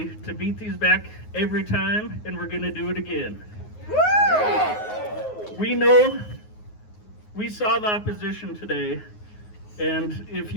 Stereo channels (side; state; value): right; late; 9.5 ms